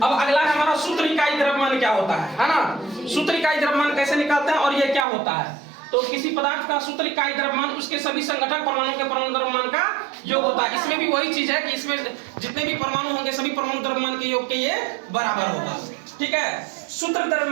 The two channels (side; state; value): left; drops out; at 5.1 s